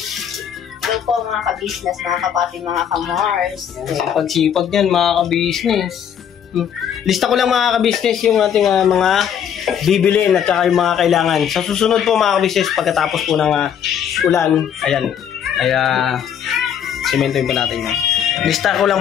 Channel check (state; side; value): quieter; right; 8.7 dB